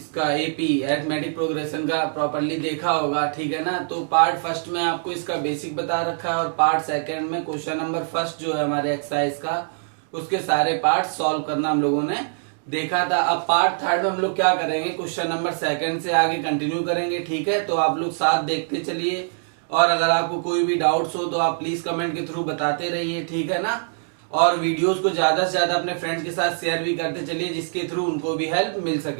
एपी अरिथमेटिक प्रोग्रेशन का प्रॉपरली देखा होगा, ठीक है ना। तो पार्ट फर्स्ट में आपको इसका बेसिक बता रखा है और पार्ट सेकंड में क्वेश्चन नंबर फर्स्ट जो है हमारे एक्सरसाइज का, उसके सारे पार्ट सॉल्व करना हम लोगों ने देखा था। अब पार्ट थर्ड में हम लोग क्या करेंगे, क्वेश्चन नंबर सेकंड से आगे कंटिन्यू करेंगे, ठीक है। तो आप लोग साथ देखते चलिए और अगर आपको कोई भी डाउट्स हो तो आप प्लीज कमेंट के थ्रू बताते रहिए, ठीक है ना। और वीडियोस को ज्यादा से ज्यादा अपने फ्रेंड्स के साथ शेयर भी करते चलिए, जिसके थ्रू उनको भी हेल्प मिल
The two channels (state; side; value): silent; left; digital silence